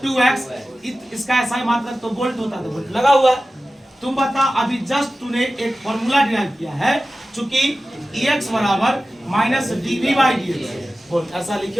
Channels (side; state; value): both; normal; correlation 0.95